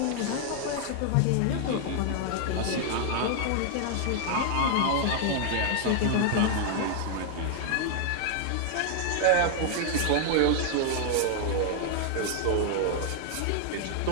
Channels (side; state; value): both; different; correlation 0.00